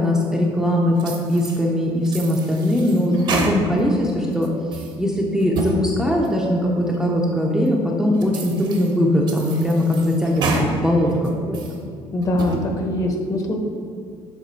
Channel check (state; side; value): normal; both; correlation 0.68